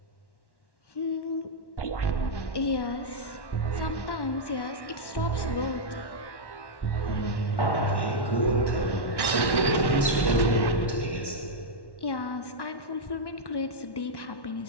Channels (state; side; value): late; right; 1.1 ms